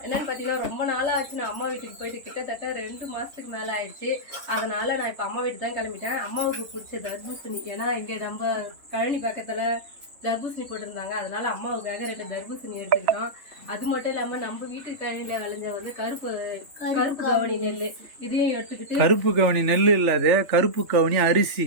என்னென்னு பார்த்தீங்கன்னா ரொம்ப நாளாக ஆச்சு நான் அம்மா வீட்டுக்கு போயிட்டு கிட்டத்தட்ட 2 மாதத்துக்கு மேலே ஆயிடுச்சு. அதனால் நான் இப்போ அம்மா வீட்டுக்கு தான் கிளம்பிட்டேன். அம்மாவுக்கு பிடிச்ச தர்பூசணி, ஏன்னா இங்கே நம்ம கழனி பக்கத்தில் தர்பூசணி போட்டிருந்தாங்க. அதனால் அம்மாவுக்காக 2 தர்பூசணி எடுத்துக்கிட்டோம். அது மட்டும் இல்லாமல் நம்ம வீட்டு கழனியில் விளைஞ்ச வந்து கருப்பு கவனி நெல், இதையும் எடுத்துக்கிட்டு. கருப்பு கவனி நெல் இல்லாத கருப்பு கவனி அரிசி,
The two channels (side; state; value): left; late; 3.5 ms